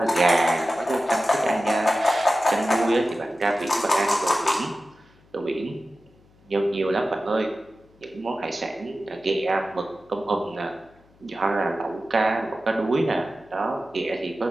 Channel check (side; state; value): left; noise; hum, 30 dB below the sound